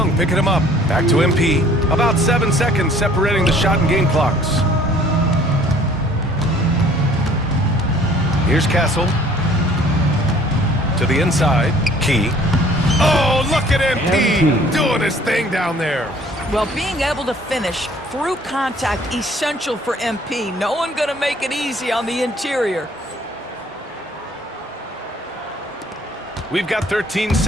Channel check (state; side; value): normal; both; correlation 0.55